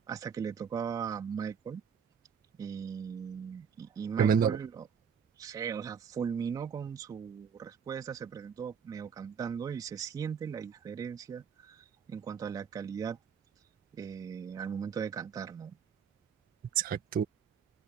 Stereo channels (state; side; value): quieter; left; 7.2 dB